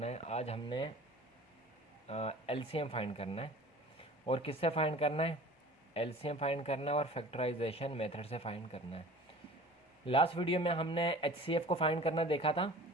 है? आज हमने LCM फाइंड करना है और किससे फाइंड करना है? LCM फाइंड करना है और फैक्टराइजेशन मेथड से फाइंड करना है। लास्ट वीडियो में हमने HCF को फाइंड करना देखा था,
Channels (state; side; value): normal; both; correlation 0.43